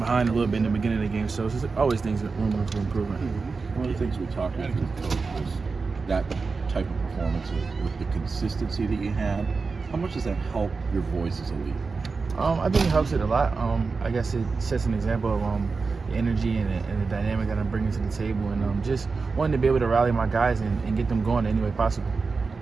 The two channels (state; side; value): quieter; left; 4.4 dB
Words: a little bit in the beginning of the game. So it's always things that room for improvement. One of the things we talked about with the coach was that type of performance with the consistency that you had. How much does that help your voice as a leader? I think it helps it a lot. I guess it sets an example of the energy and the dynamic that I'm bringing to the table, and just wanting to be able to rally my guys and get them going any way possible.